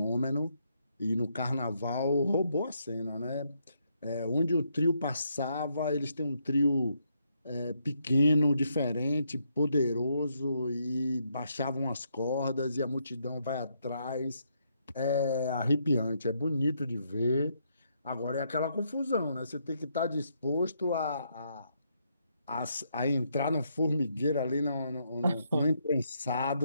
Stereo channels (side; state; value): both; inverted; correlation -0.76